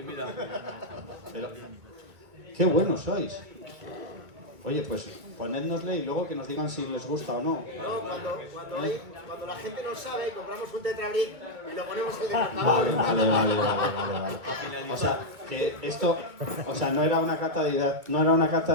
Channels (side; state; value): left; late; 2.3 ms